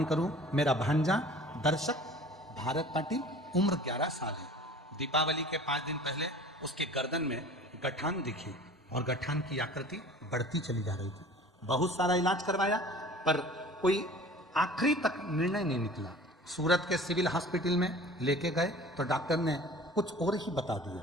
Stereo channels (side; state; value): both; normal; correlation 0.44